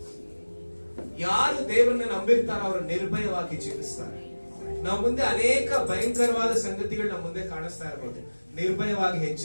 ಯಾರು ದೇವರನ್ನ ನಂಬಿರ್ತಾರೋ ಅವರು ನಿರ್ಭಯವಾಗಿ ಜೀವಿಸ್ತಾರೆ. ನಾವು ಮುಂದೆ ಅನೇಕ ಭಯಂಕರವಾದ ಸಂಗತಿಗಳು ನಮ್ಮ ಮುಂದೆ ಕಾಣಿಸ್ತಾ ಇರ್ಬೋದು, ನಿರ್ಭಯವಾಗಿ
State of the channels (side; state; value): both; inverted; correlation -1.00